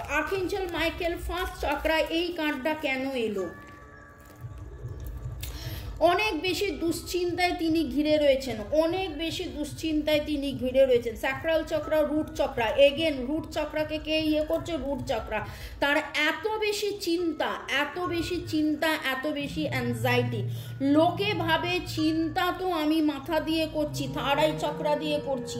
আর্কএঞ্জেল মাইকেল, ফার্স্ট চক্রা, এই কার্ডটা কেন এলো? অনেক বেশি দুশ্চিন্তায় তিনি ঘিরে রয়েছেন, অনেক বেশি দুশ্চিন্তায় তিনি ঘিরে রয়েছেন। Sacral chakra, root chakra, again root চক্রাকে কে ইয়ে করছে? রুট চক্রা। তার এত বেশি চিন্তা, এত বেশি চিন্তা, এত বেশি অ্যাংজাইটি। লোকে ভাবে চিন্তা তো আমি মাথা দিয়ে করছি, থার্ড আই চক্রা দিয়ে করছি,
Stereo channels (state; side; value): identical; both; correlation 1.00